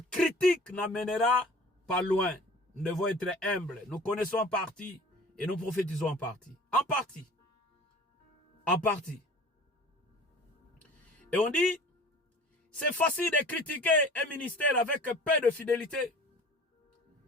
critique n'amènera pas loin. Nous devons être humbles. Nous connaissons en partie et nous prophétisons en partie. En partie. En partie. Et on dit, c'est facile de critiquer un ministère avec peu de fidélité.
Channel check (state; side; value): normal; both; correlation 0.44